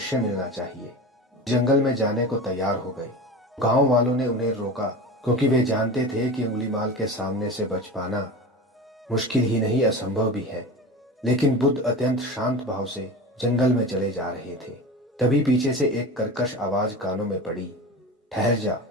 मिलना चाहिए। जंगल में जाने को तैयार हो गए। गांव वालों ने उन्हें रोका क्योंकि वे जानते थे कि अंगुलीमाल के सामने से बच पाना मुश्किल ही नहीं असंभव भी है। लेकिन बुद्ध अत्यंत शांत भाव से जंगल में चले जा रहे थे। तभी पीछे से एक कर्कश आवाज कानों में पड़ी, ठहर जा,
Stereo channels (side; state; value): both; normal; correlation 0.30